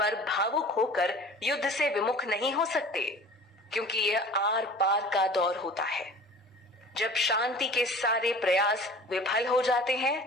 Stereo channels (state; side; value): normal; both; correlation 0.43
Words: भावुक होकर युद्ध से विमुख नहीं हो सकते, क्योंकि यह आर पार का दौर होता है। जब शांति के सारे प्रयास विफल हो जाते हैं,